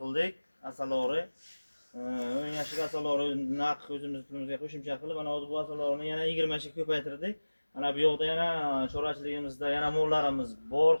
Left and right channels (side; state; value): both; inverted; correlation -1.00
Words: qildik. Asalori 10 yoshlik asalori naq o'zimiz pulimizga qo'shimcha qilib, ana bu asalorni yana 20 ga ko'paytirdik. Ana bu yoqda yana chorvachiligimizda yana mollarimiz bor